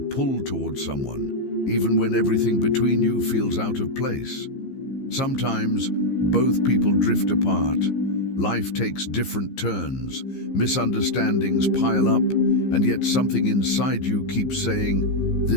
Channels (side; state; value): right; late; 15 ms